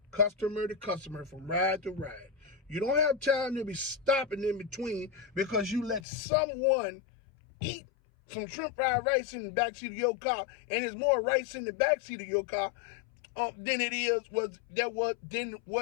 customer to customer from ride to ride. You don't have time to be stopping in between because you let someone eat some shrimp fried rice in the backseat of your car, and there's more rice in the backseat of your car than it is what that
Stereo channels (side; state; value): right; drops out; at 6.0 s